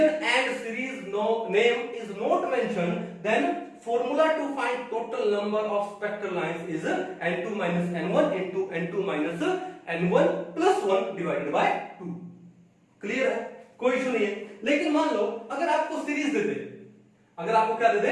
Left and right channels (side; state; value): both; identical; correlation 1.00